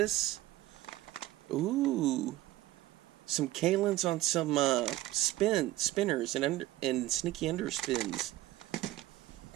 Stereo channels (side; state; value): left; quieter; 15.9 dB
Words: Ooh, some Kalins on some spinners and sneaky underspins.